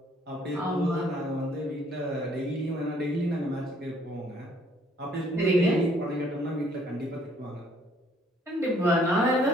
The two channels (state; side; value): normal; both; correlation 0.63